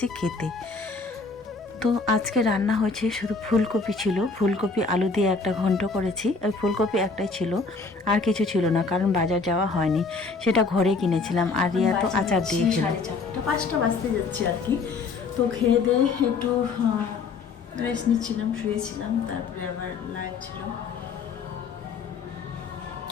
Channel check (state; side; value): quieter; right; 4.3 dB